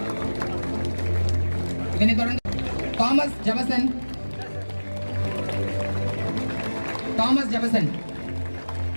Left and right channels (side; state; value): both; inverted; correlation -1.00